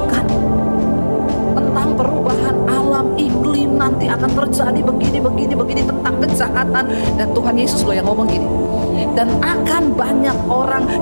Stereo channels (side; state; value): both; inverted; correlation -1.00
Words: kejahatan. Dan Tuhan Yesus loh yang ngomong gini, dan akan banyak orang